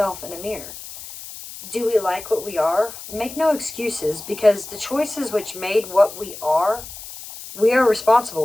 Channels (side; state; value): left; noise; hiss, 13 dB below the sound